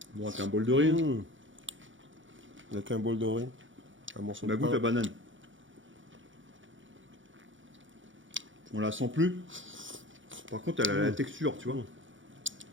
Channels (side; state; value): left; late; 0.56 ms